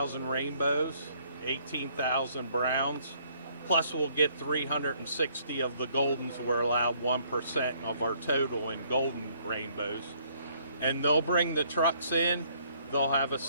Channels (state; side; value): inverted; both; correlation -0.65